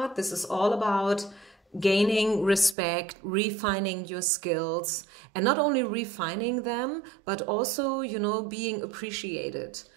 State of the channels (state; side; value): drops out; left; at 2.8 s